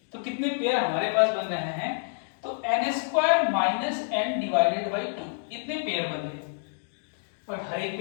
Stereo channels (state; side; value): silent; right; digital silence